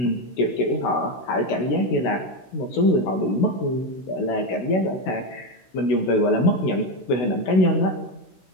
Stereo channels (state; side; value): late; right; 16 ms